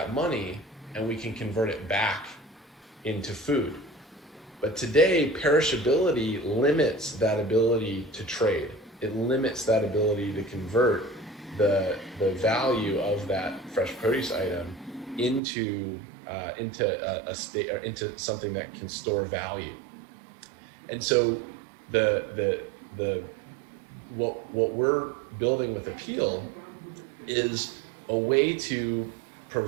money and we can convert it back into food. But today, perishability limits that ability to trade. It limits that ability to convert the value of that fresh produce item into a state, or into something that can store value. And so the what we're building with Apeel is a way to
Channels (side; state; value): left; drops out; at 15.4 s